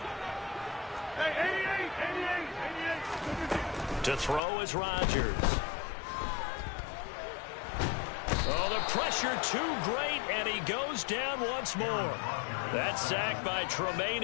To throw is Rodgers. Oh, the pressure too great, and he goes down once more. That sack by Tremaine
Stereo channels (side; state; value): right; drops out; at 4.4 s